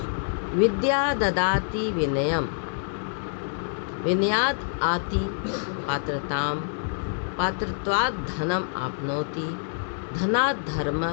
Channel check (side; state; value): right; silent; 61 dB below the other